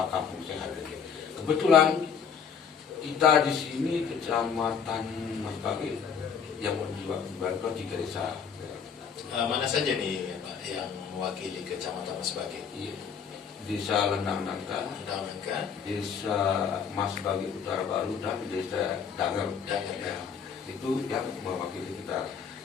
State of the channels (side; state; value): right; quieter; 6.8 dB